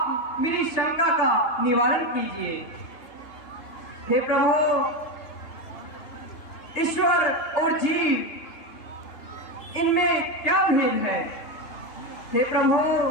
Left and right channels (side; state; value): right; late; 3.3 ms